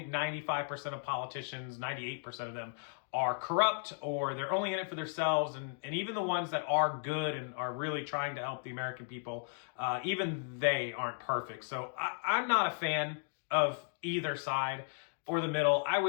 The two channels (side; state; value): right; silent; digital silence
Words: 95% of politicians, 98% of them are corrupt, or they're only in it for themselves. And even the ones that are good and are really trying to help the American people, even they aren't perfect. So I'm not a fan of either side or the middle. I